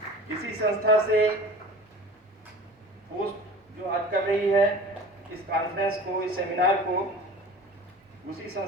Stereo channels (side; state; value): both; normal; correlation 0.40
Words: इसी संस्था से पोस्ट जो आज कर रही है इस कॉन्फ्रेंस को, इस सेमिनार को, उसी